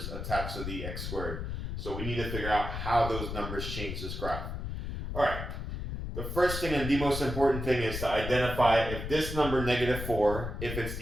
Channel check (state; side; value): noise; left; rumble, 5 dB below the sound